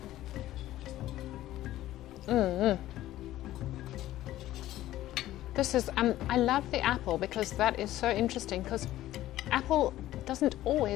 This is, I love the apple, because that is so interesting, because apple doesn't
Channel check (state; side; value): quieter; right; 14.5 dB